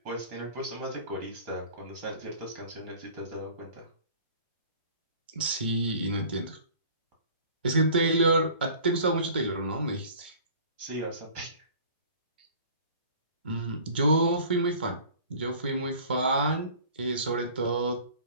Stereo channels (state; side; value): inverted; both; correlation -0.46